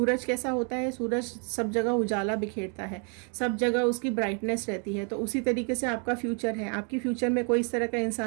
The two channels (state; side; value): quieter; left; 38.8 dB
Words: कैसा होता है, सूरज सब जगह उजाला बिखेरता है, सब जगह उसकी ब्राइटनेस रहती है, तो उसी तरीके से आपका फ्यूचर है। आपकी फ्यूचर में कोई इस तरह का